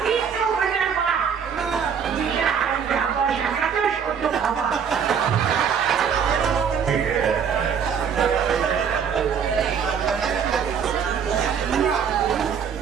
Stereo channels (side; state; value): left; quieter; 7.2 dB